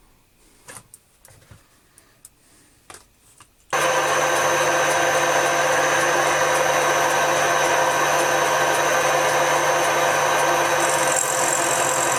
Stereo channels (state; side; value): identical; both; correlation 1.00